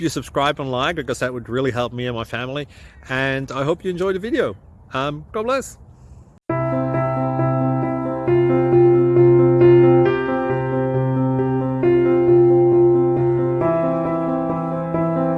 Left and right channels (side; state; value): both; identical; correlation 1.00